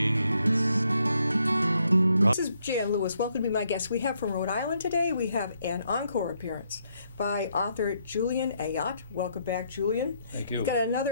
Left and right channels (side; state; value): both; inverted; correlation -0.74